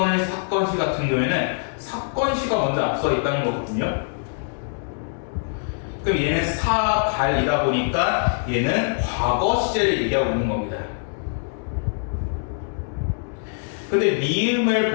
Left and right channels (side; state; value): right; silent; digital silence